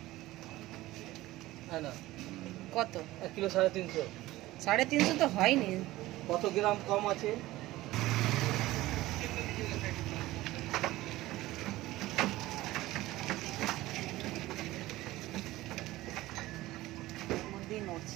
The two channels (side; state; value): left; quieter; 17.4 dB